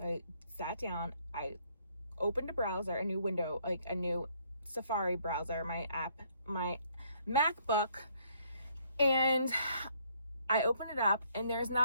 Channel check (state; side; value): inverted; both; correlation -0.66